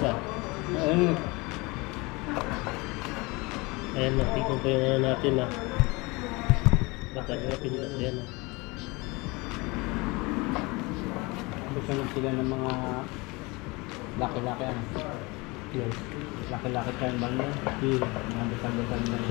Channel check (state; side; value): quieter; right; 25.3 dB